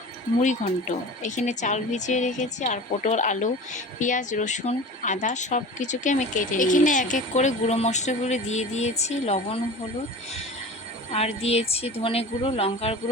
মুড়িঘণ্ট। এখানে চাল ভিজিয়ে রেখেছি আর পটল, আলু, পেঁয়াজ, রসুন, আদা সব কিছুকে আমি কেটে নিয়েছি। এখানে এক এক করে গুঁড়ো মশলাগুলো দিয়ে দিয়েছি, লবণ, হলুদ, আর দিয়েছি ধনে গুঁড়ো, লঙ্কার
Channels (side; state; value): both; normal; correlation 0.36